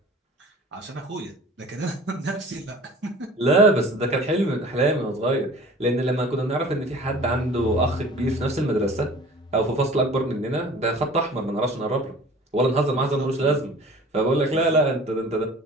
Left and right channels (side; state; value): both; normal; correlation 0.45